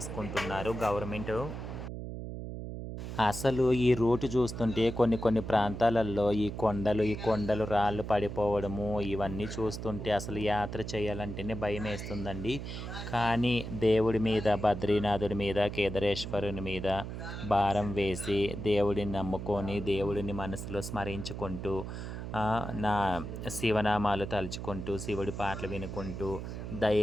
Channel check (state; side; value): noise; right; hum, 7 dB below the sound